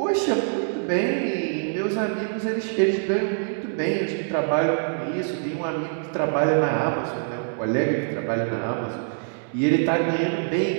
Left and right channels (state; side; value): silent; left; 62 dB below the other